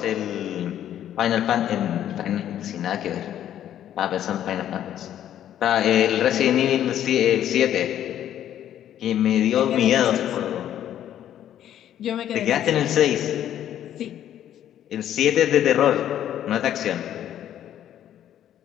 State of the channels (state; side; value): quieter; right; 11.0 dB